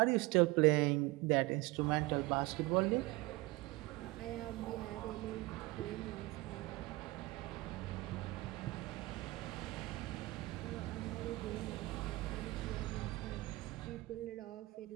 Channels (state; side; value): quieter; left; 21.3 dB